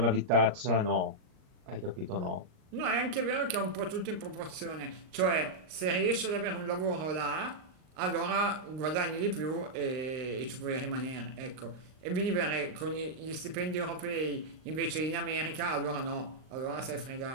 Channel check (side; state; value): left; late; 38 ms